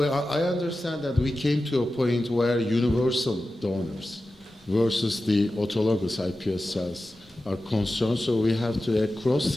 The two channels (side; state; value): both; normal; correlation 0.93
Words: I understand that we came to a point where universal donors versus the autologous iPS cells are concerned. So we have to a